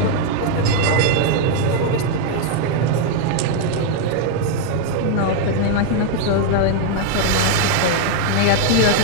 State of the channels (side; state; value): both; different; correlation 0.00